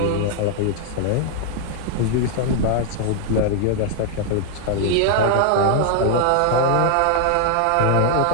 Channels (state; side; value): different; both; correlation 0.00